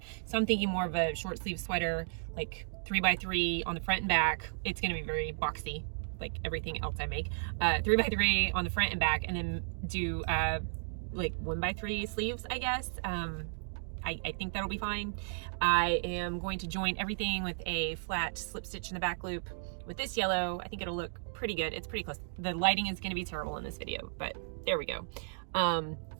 So I'm thinking more of a short sleeve sweater, like 3x3 on the front and back. It's gonna be very boxy, like everything else I make. 3x3 on the front and back, and then do like 1x3 sleeves, I guess. I think that'll be fine. I am going to join everything with a flat slip stitch in the back loop with this yellow. I think it'll look pretty good. It's pretty close. The lighting is going to be terrible in this video, but there we go. And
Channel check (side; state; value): left; silent; digital silence